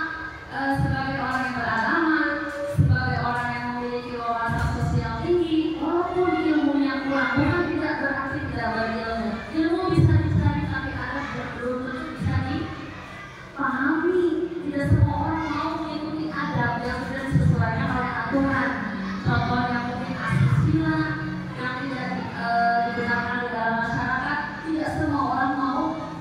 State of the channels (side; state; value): both; identical; correlation 1.00